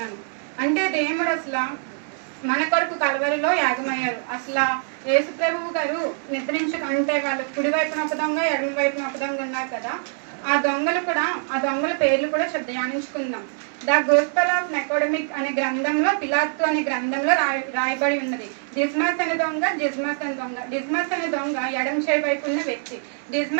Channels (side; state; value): left; silent; 63 dB below the other